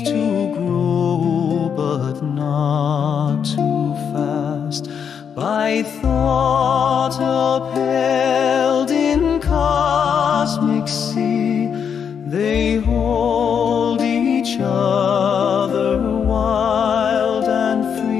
to grow, but not too fast. By thought upheld in cosmic sea, they hold each other wild and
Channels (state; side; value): quieter; right; 7.4 dB